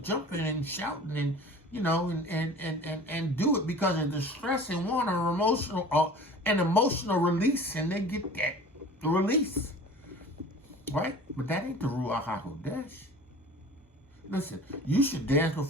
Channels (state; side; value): normal; both; correlation 0.42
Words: and shouting and, you know, and do it because of the stress and want an emotional release, and they get that release, right? But that ain't the Ruach HaKodesh. Listen, you should dance